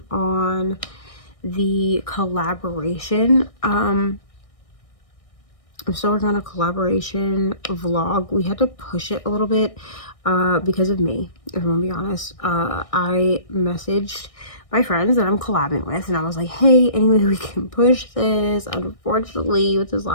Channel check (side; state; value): right; late; 1.6 ms